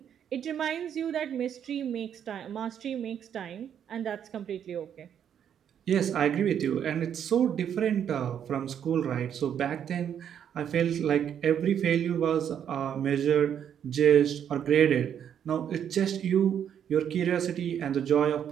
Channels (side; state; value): left; quieter; 8.9 dB